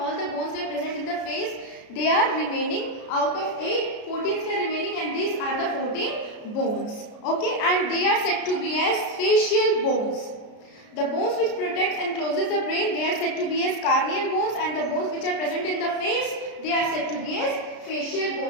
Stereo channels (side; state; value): right; late; 33 ms